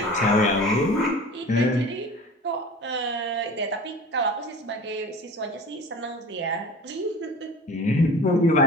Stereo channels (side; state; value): both; normal; correlation 0.39